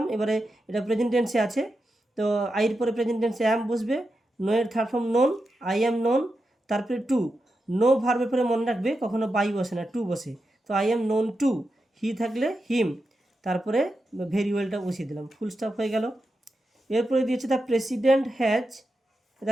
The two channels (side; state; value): both; normal; correlation 0.89